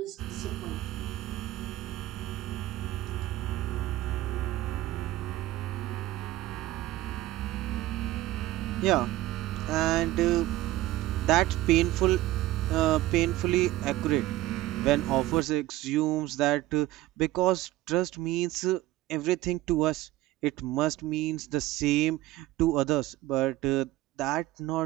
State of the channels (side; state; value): left; quieter; 16.0 dB